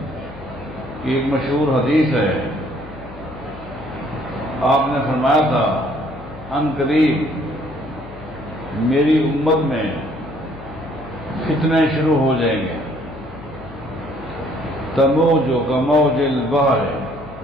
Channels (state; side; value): noise; left; hum, 18 dB below the sound